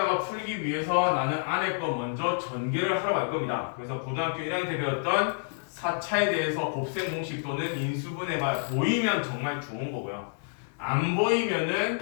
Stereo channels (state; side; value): silent; right; 59 dB below the other